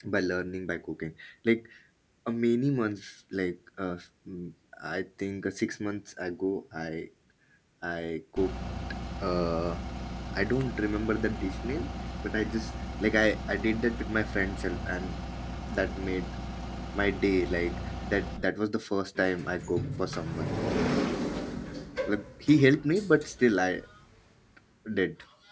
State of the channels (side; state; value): both; identical; correlation 1.00